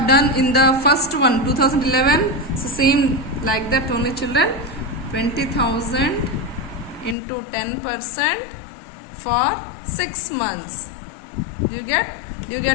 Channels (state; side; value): drops out; right; at 7.2 s